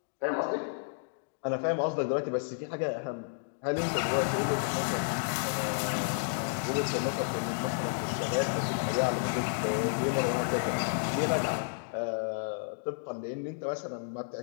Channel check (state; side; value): silent; right; digital silence